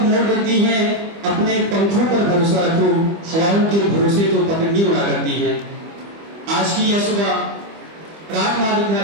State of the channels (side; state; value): left; late; 25 ms